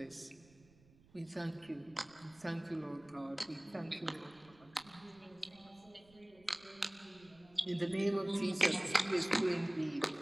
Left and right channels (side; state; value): right; noise; rumble, 27 dB below the sound